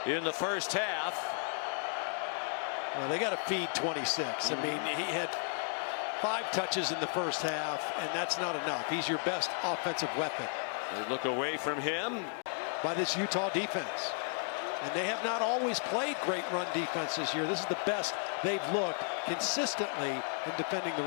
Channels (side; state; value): right; silent; 55 dB below the other